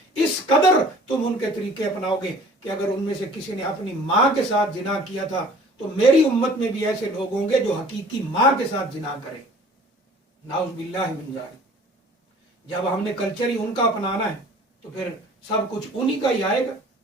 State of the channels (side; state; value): both; normal; correlation 0.50